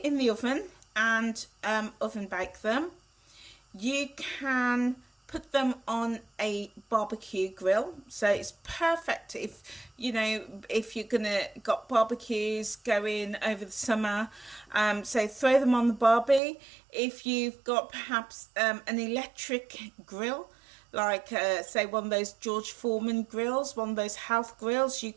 in the oven and oven bake them. You can put them on a barbecue grill, so it's perfect if, you know, if you're gonna got barbecues going over the summer. So throw them on the barbie. If you've got perhaps an electric grill, like say one of those George Foreman grills, one of those health grills, you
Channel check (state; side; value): drops out; left; at 16.4 s